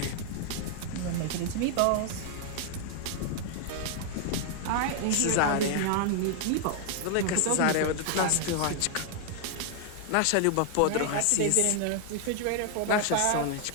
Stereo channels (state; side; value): different; both; correlation 0.00